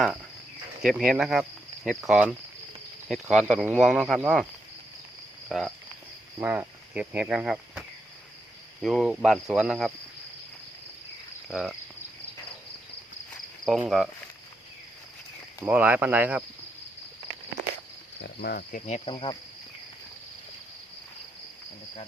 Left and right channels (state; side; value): normal; both; correlation 0.82